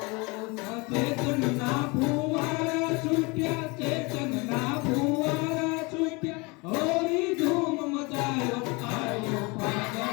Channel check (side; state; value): right; quieter; 27.2 dB